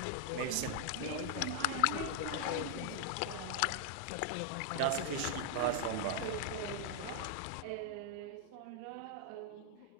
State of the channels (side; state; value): both; different; correlation 0.00